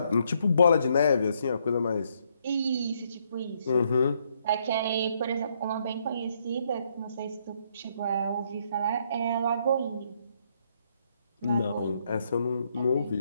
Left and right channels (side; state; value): both; inverted; correlation -0.72